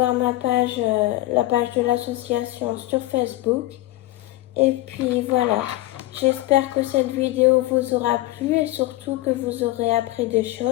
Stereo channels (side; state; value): right; quieter; 17.7 dB